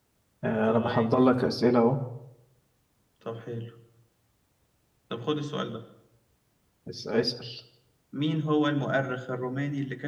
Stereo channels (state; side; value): identical; both; correlation 1.00